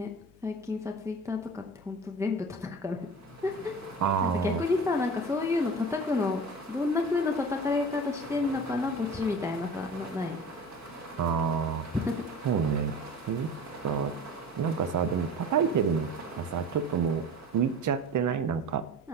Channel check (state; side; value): noise; left; hum, 28 dB below the sound